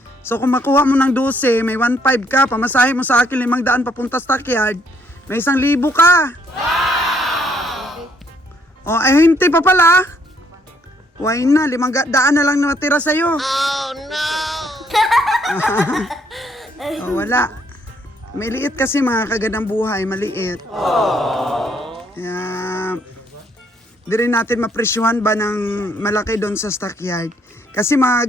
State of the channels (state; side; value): normal; both; correlation 0.69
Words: So kung makuha mo ng 12, may 1.5 ka, pamasahe mo sa akin 500 papunta stockyard, may 1,000 ka. O, ay hindi pa pala. Why na, 500 na lang na natira sa'yo. Oh no! O, wala. May liit kasi mga kagandang buhay, maliit. Kaya, di rin natin mapresyuhan ba ng malaki doon sa stockyard. Kasi mga